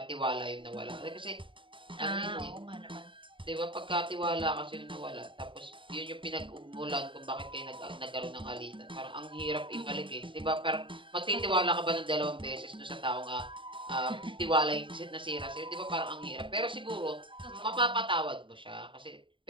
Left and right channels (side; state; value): left; late; 0.25 ms